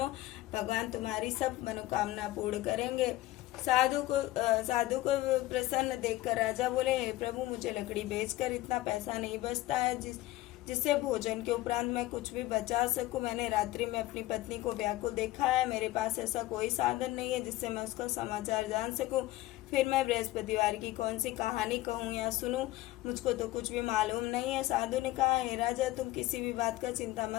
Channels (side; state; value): right; quieter; 16.9 dB